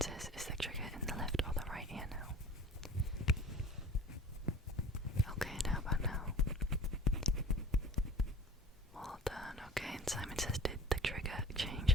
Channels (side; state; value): both; normal; correlation 0.45